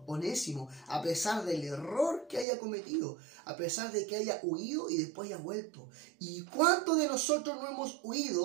Onésimo, a pesar del error que haya cometido, a pesar de que haya huido y después haya vuelto. ¿Y cuántos de nosotros no hemos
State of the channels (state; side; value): drops out; left; at 2.5 s